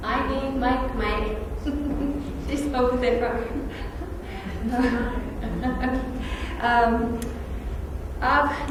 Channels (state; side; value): identical; both; correlation 1.00